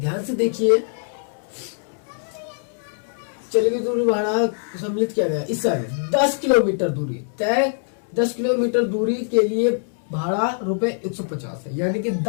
से देखिए। चलिए दूरी भाड़ा सम्मिलित किया गया इस सारे 10 किलोमीटर दूरी तय, 10 किलोमीटर दूरी के लिए भाड़ा रुपए 150 है, यानी कि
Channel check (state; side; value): silent; right; 63 dB below the other